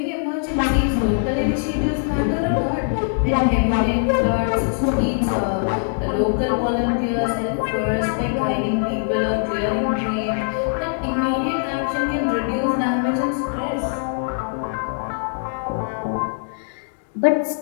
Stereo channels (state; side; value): silent; right; digital silence